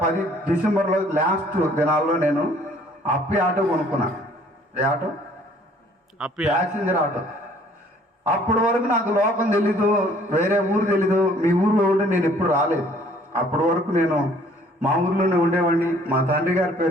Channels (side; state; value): both; normal; correlation 0.58